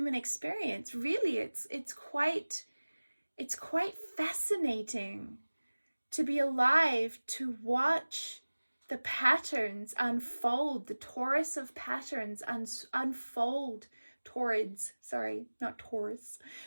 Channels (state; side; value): inverted; both; correlation -1.00